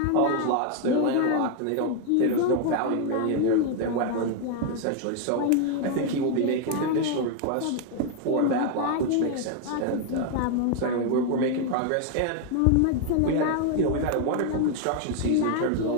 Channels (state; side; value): different; both; correlation 0.00